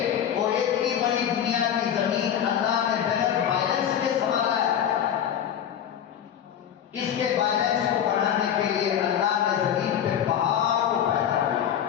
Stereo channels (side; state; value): right; quieter; 9.4 dB